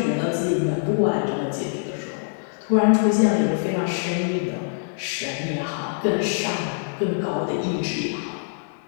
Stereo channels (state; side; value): silent; right; digital silence